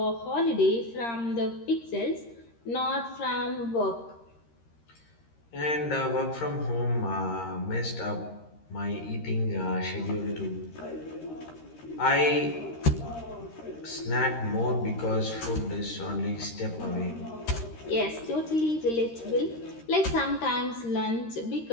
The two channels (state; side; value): late; right; 13 ms